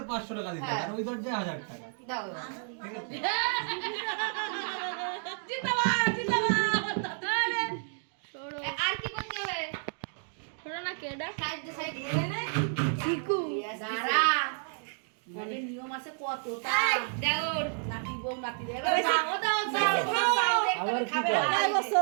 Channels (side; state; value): left; silent; 57 dB below the other